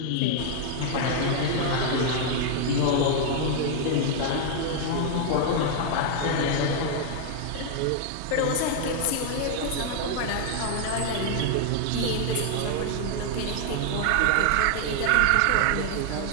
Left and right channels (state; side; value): different; both; correlation 0.00